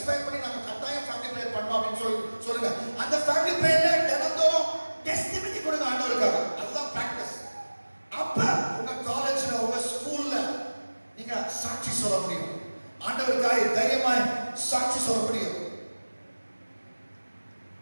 பண்ணி நாங்க கட்டாயம் ஃபேமிலி பிரேயர் பண்ணோம் அப்படின்னு சொல்லுங்க. அந்த ஃபேமிலி பிரேயர்ல தினந்தோறும் டெஸ்டிமனி கொடுங்க ஆண்டவருக்காக. அதுதான் பிராக்டிஸ். அப்ப உங்க காலேஜ்ல, உங்க ஸ்கூல்ல நீங்க சாட்சி சொல்ல முடியும். ஆண்டவருக்காக தைரியமாய் சாட்சி சொல்ல முடியும்.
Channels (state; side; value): inverted; both; correlation -1.00